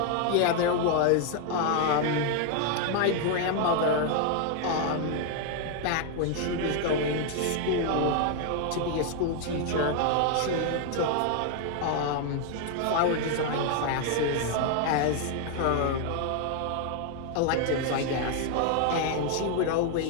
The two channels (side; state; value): both; different; correlation 0.00